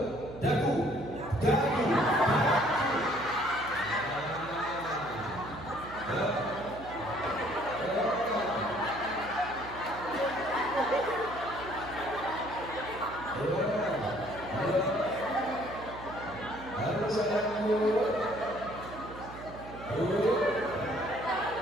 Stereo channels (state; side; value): noise; right; hum, 14 dB below the sound